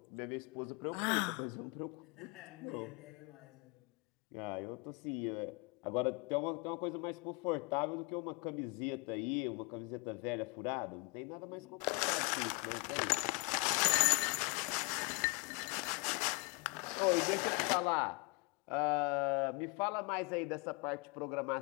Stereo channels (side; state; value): right; quieter; 30.6 dB